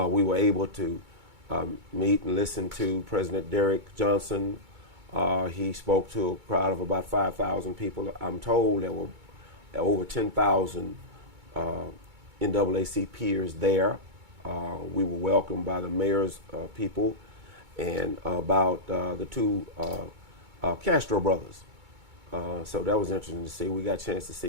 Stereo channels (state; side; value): late; left; 2.2 ms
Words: were able to meet and listen to President Derrick Johnson. He spoke to a crowd of about 5,000 people. I'm told there were over 10,000 NAACPers there. We were welcomed by the mayor's people and about the two Castro brothers. So that was interesting to see. We got a chance to